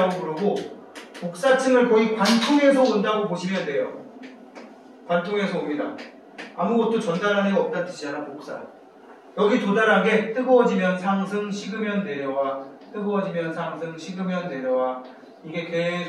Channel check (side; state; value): both; identical; correlation 1.00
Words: 부르고 복사층을 거의 관통해서 온다고 보시면 돼요. 관통해서 옵니다. 아무것도 전달하는 애가 없다는 뜻이잖아, 복사. 여기 도달한 게 뜨거워지면 상승, 식으면 내려와. 뜨거워지면 상승, 식으면 내려와. 이게